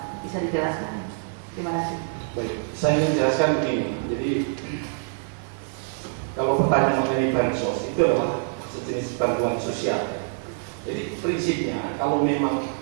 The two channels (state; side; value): silent; left; 61 dB below the other